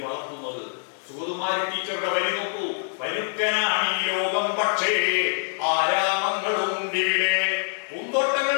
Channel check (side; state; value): right; silent; 62 dB below the other